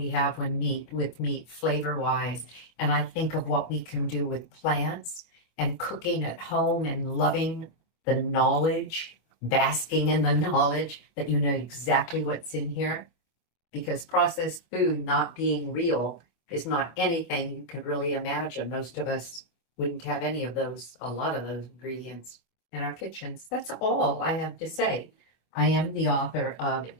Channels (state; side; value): late; right; 25 ms